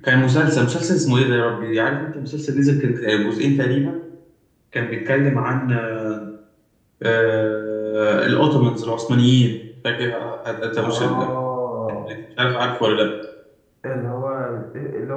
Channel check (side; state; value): both; identical; correlation 1.00